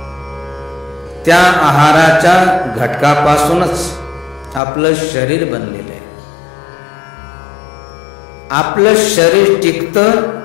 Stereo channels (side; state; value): right; drops out; at 4.6 s